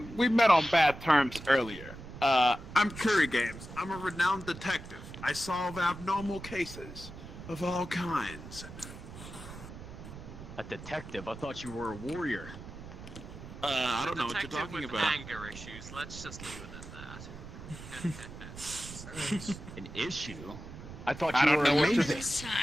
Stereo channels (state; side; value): noise; right; rumble, 13 dB below the sound